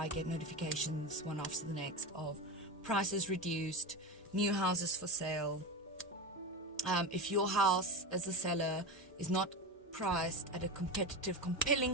get notifications one after the next of prices reduced, new houses for sale. If your house as a seller is not priced at a competitive,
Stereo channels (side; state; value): both; normal; correlation 0.22